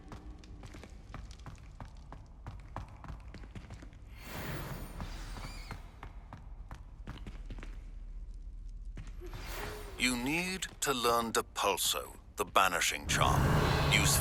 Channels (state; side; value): identical; both; correlation 1.00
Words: You need to learn Depulso, the banishing charm,